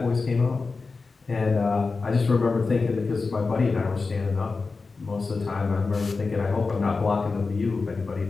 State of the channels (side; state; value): right; quieter; 4.2 dB